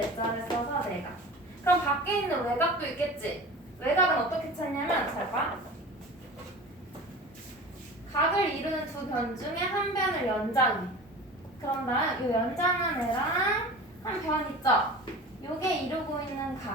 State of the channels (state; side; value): normal; both; correlation 0.36